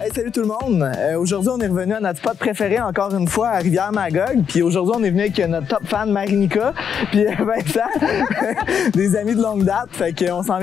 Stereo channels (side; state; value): right; quieter; 7.5 dB